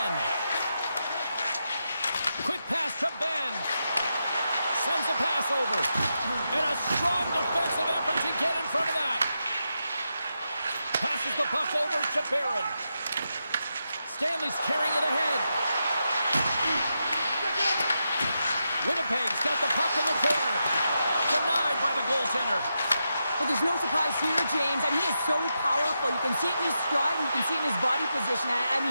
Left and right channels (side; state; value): both; inverted; correlation -0.86